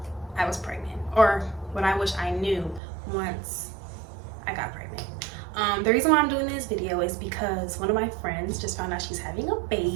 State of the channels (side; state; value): left; drops out; at 2.8 s